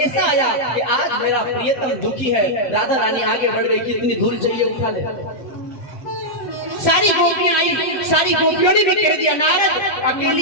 आया कि आज मेरा प्रियतम दुखी है। राधा रानी आगे बढ़ गई, कितनी धूल चाहिए उठा ले। सारी गोपियां आई, सारी गोपियों ने भी कह दिया नारद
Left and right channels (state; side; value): late; right; 7.4 ms